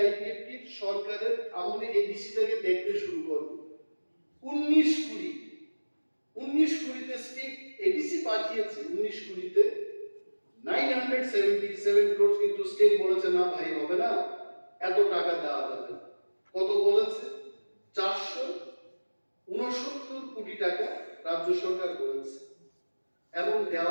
আইপিএফটি সরকারের আমলে এডিসি থেকে দেখতে শুরু করব। 19 কুড়িতে স্টেট এডিসি পাঠিয়েছে, 19 কুড়িতে 977 crores, কিন্তু স্টেট বলেছে না ভাই হবে না, এত টাকা দেওয়া যাবে না। কত বলেছে? 469 কোটি টাকা রাজ্য সরকার বলেছে, এবং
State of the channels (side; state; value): both; inverted; correlation -1.00